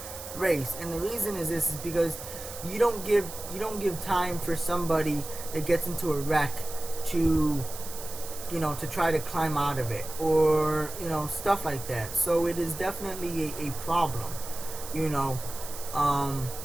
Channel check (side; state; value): right; noise; hiss, 11 dB below the sound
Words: race. And the reason is this is because you don't give time for somebody that gets into a wreck to to try to climb out of it, or stuff like that. So it is definitely a problem.